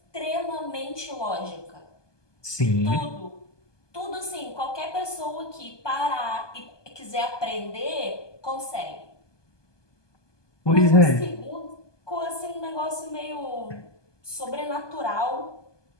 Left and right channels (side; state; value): right; late; 1.2 ms